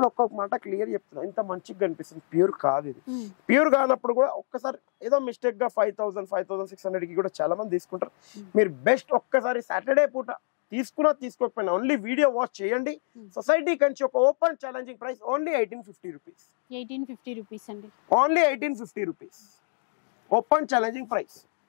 ఒక్కొక్క మాట క్లియర్ చెప్తున్నా, ఇంత మంచిగా కనిపిస్తుంది, ప్యూర్ కాదు ఇది. ప్యూర్ కానప్పుడు కూడా ఒక్కసారి ఏదో మిస్టేక్ గా 5,000, 5,600 కి కూడా చాలా మంది తీసుకుంటారు. మీరు బెస్ట్ ఒక్కసారి సాటర్డే పూట తీసుకోకపోయినా ఓన్లీ వీడియో వాచ్ చేయండి. సొసైటీ కంచి ఒక open challenging price only 1850 rupees. 1850 rupees అండి, only 1850 rupees open challenging price.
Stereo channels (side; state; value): right; silent; digital silence